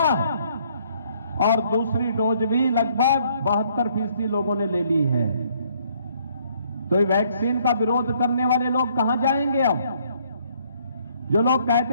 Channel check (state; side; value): inverted; both; correlation -0.65